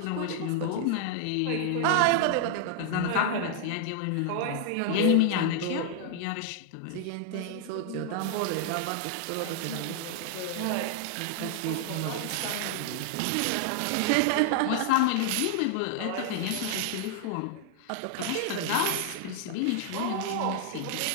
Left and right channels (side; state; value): both; different; correlation 0.00